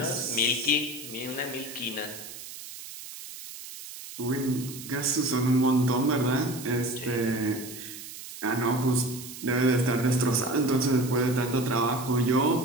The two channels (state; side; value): noise; right; hiss, 13 dB below the sound